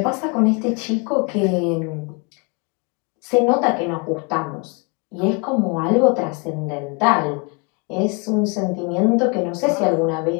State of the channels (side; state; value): right; quieter; 33.0 dB